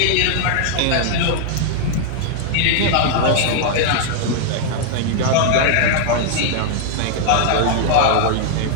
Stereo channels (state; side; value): different; both; correlation 0.00